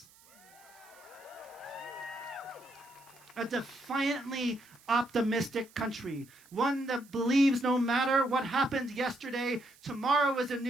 A defiantly optimistic country, one that believes no matter what happened yesterday, tomorrow is a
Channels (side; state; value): right; noise; hiss, 26 dB below the sound